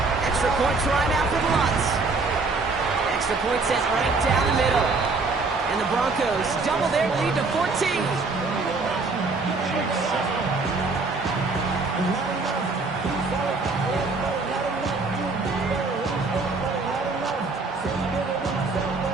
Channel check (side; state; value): left; quieter; 3.9 dB